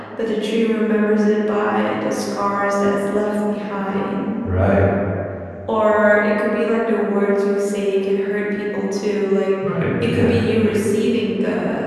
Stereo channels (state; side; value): identical; both; correlation 1.00